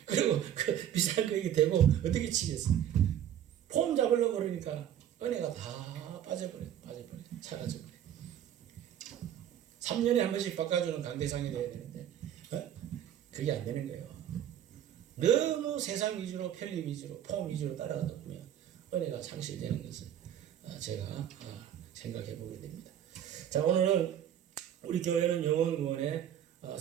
그리고 그 비싼 거 이게 대고 어떻게 치겠어? 폼 잡으려고 그러니까 은혜가 다 빠져버려. 사라져버려. 3년에 한 번씩 바꿔주는 강대상이 돼야 되는데 그게 안 되는 거예요. 너무 세상 위주로, 편리 위주로, 폼 위주로 따라가다 보면 은혜가 상실되는 것을 제가 생각해 보게 됩니다. 자, 오늘은 우리 교회는 영혼 구원의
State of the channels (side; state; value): left; quieter; 10.4 dB